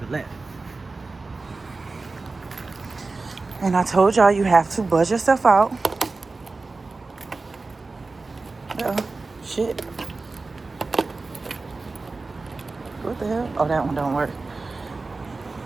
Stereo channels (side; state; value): left; quieter; 3.7 dB